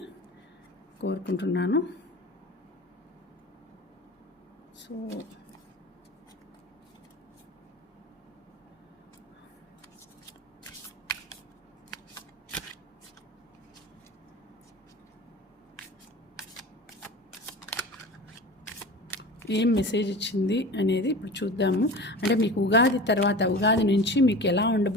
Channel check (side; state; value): both; normal; correlation 0.35